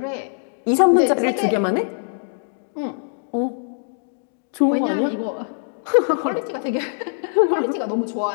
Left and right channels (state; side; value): silent; right; digital silence